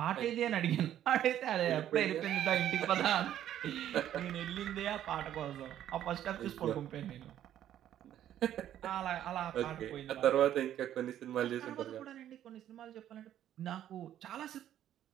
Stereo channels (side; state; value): left; quieter; 11.3 dB